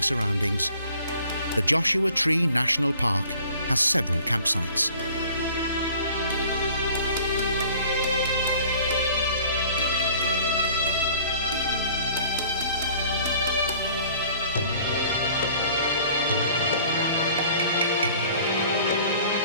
surroundings, the Joshua Tree National Park has several campsites.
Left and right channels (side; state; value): both; inverted; correlation -0.51